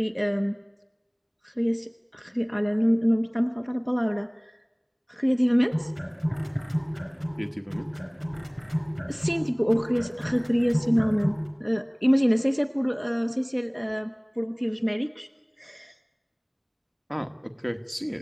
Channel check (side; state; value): both; identical; correlation 1.00